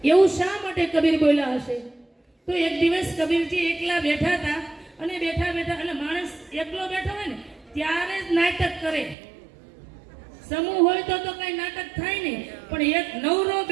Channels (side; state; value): left; drops out; at 9.2 s